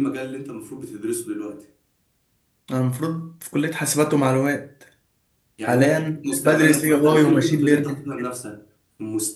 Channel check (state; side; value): identical; both; correlation 1.00